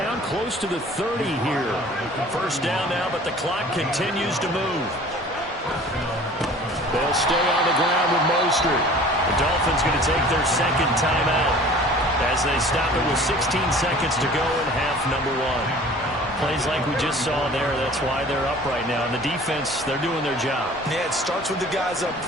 close to the 30 here. First down now, but the clock continues to move. They'll stay on the ground with Mostert. The Dolphins going to take their 2nd timeout as they stop it with 16 seconds to go in half number 1. Plays like we just saw there. That's why they're up right now. And the defense, they're doing their job. Yeah, it starts with the guys up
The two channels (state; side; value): normal; both; correlation 0.46